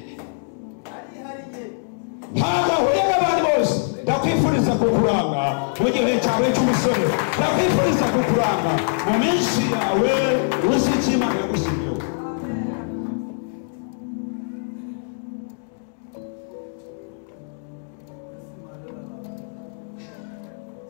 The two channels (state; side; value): silent; right; digital silence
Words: ntabwo ahuye n'abandi bose ndakwifuriza kukuranga mu gihe cyawe cy'umusore ndakwifuriza kukuranga mu minsi yawe uzi icyo Imana yagushyiriyeho